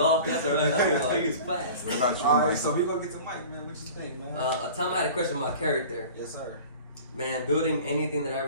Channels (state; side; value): inverted; both; correlation -0.41